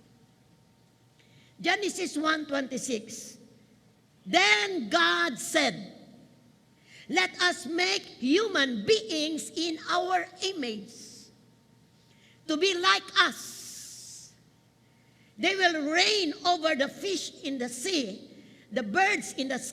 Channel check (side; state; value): both; identical; correlation 1.00